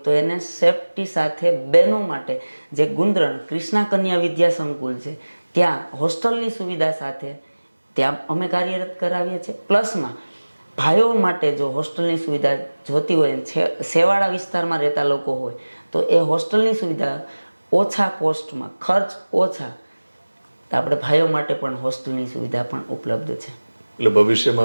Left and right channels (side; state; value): both; inverted; correlation -1.00